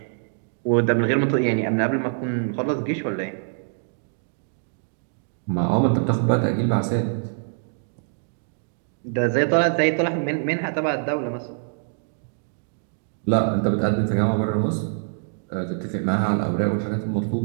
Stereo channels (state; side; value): silent; left; digital silence